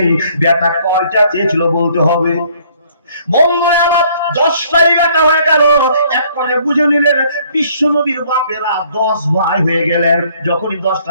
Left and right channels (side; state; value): both; inverted; correlation -0.61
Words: বেটা কয়টা চেয়েছিল বলতে হবে? মঙ্গলে আবার 10টাই বেটা হয়ে গেল। এক করে বুঝে নিলেন বিশ্ব নবীর বাপেরা 10 ভাই হয়ে গেলেন। যখনই